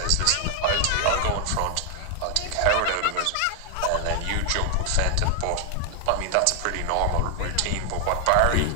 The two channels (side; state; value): both; different; correlation 0.00